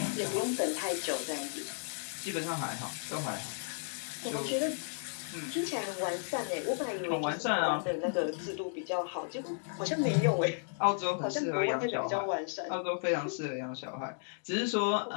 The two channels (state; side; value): silent; right; digital silence